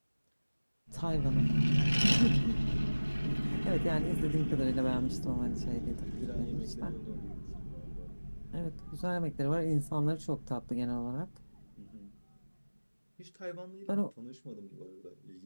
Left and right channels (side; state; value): both; inverted; correlation -1.00